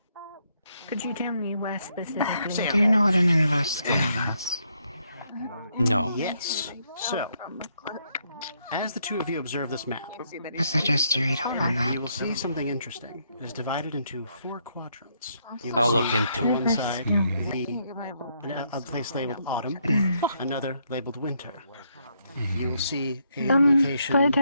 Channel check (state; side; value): inverted; both; correlation -0.74